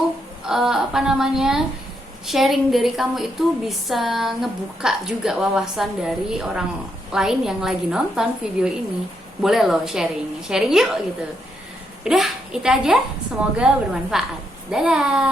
sharing dari kamu itu bisa ngebuka juga wawasan dari orang lain yang lagi nonton video ini. Boleh loh sharing yuk gitu. Udah, itu aja, semoga bermanfaat.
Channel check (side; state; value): both; normal; correlation 0.79